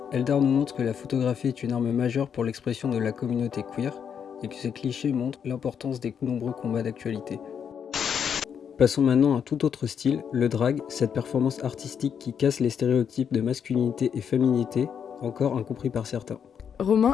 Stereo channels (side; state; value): right; quieter; 7.6 dB